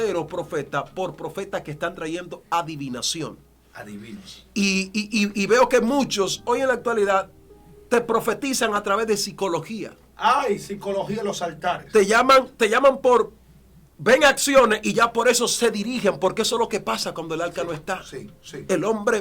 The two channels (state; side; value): identical; both; correlation 1.00